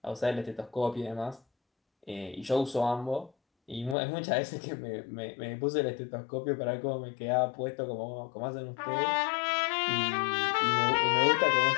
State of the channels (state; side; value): drops out; right; at 4.0 s